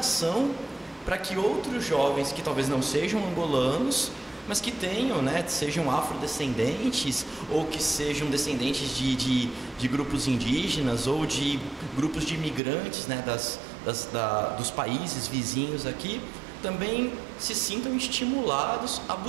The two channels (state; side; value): drops out; left; at 12.6 s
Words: para que outros jovens que talvez não sejam angolanos, mas que tenham, né, sejam afrodescendentes ou que sejam descendentes de grupos indígenas ou de grupos de imigrantes, né, dos países vizinhos aqui, também se sintam estimulados a